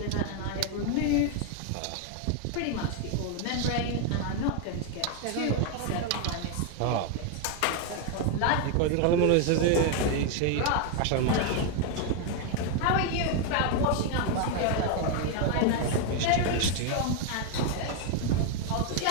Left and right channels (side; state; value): both; different; correlation 0.01